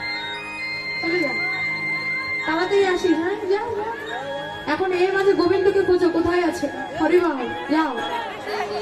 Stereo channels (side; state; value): both; identical; correlation 1.00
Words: চলে যা, তাড়াতাড়ি আসিস। হ্যাঁ, যাও। এখন এর মাঝে গোবিন্দকে খোঁজো, কোথায় আছে? হরিবল, যাও।